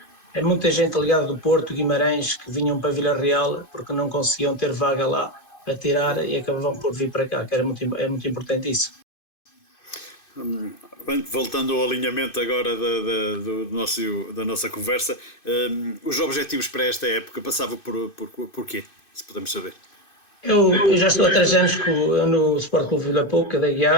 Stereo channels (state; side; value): late; right; 2.6 ms